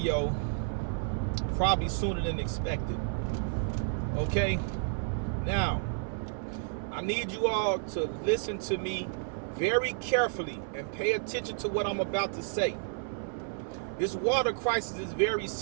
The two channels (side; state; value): left; silent; 55 dB below the other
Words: probably sooner than expected. Okay, now I need you all to listen to me very carefully and pay attention to what I'm about to say. This water crisis is very